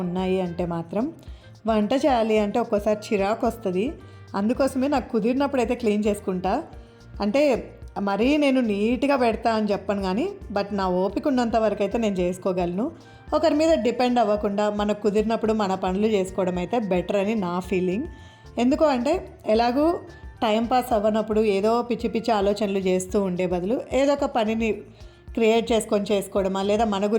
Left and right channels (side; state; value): both; identical; correlation 1.00